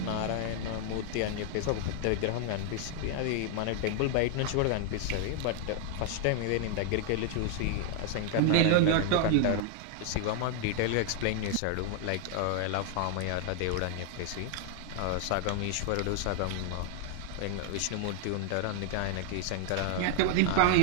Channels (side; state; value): both; different; correlation 0.00